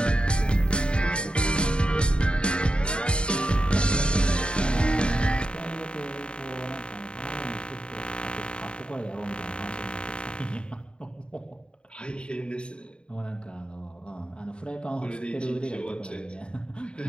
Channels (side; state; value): right; late; 0.053 ms